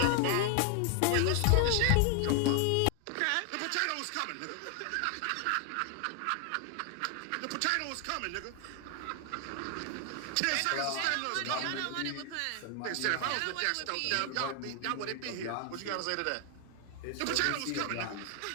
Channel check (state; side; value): different; both; correlation 0.00